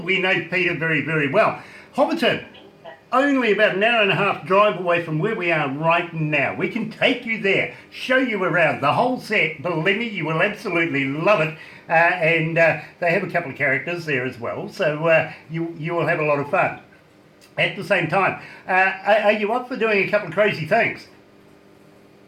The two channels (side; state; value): both; identical; correlation 1.00